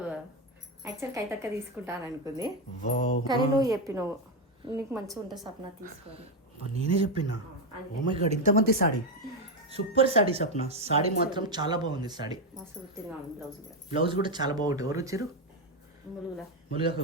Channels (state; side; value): normal; both; correlation 0.07